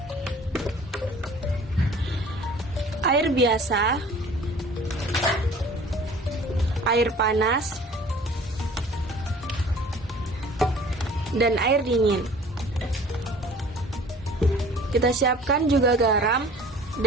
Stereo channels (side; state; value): both; normal; correlation 0.49